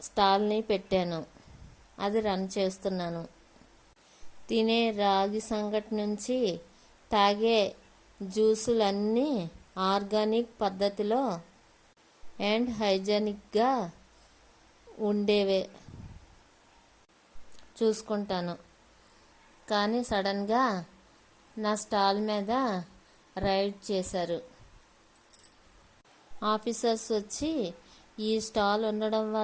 స్టాల్ని పెట్టాను. అది రన్ చేస్తున్నాను. తినే రాగి సంగటి నుంచి తాగే జ్యూసులన్నీ ఆర్గానిక్ పద్ధతిలో అండ్ హైజెనిక్గా ఉండేవే చూసుకుంటాను. కానీ సడన్గా నా స్టాల్ మీద రైడ్ చేశారు. ఆఫీసర్స్ వచ్చి ఈ స్టాల్ ఉండడం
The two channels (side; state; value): both; identical; correlation 1.00